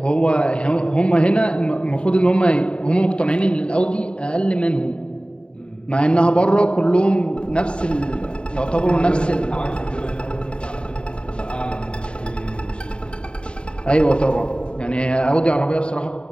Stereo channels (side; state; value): right; late; 0.053 ms